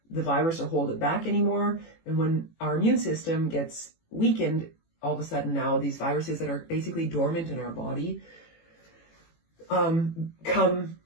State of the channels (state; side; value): late; right; 18 ms